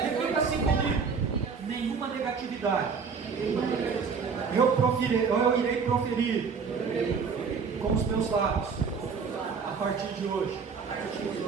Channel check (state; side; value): quieter; left; 5.6 dB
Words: assim comigo: nenhuma negatividade eu irei proferir com os meus lábios a partir de hoje,